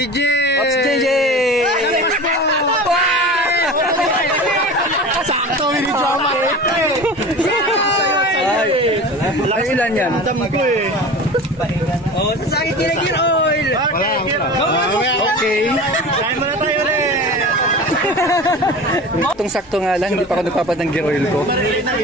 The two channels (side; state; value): both; normal; correlation 0.35